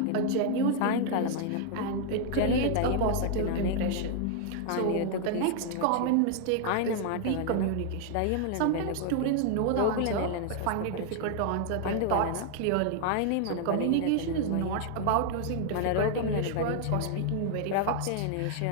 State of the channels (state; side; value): different; both; correlation 0.00